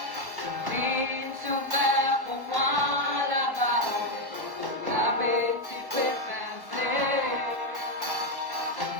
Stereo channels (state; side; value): late; left; 1.1 ms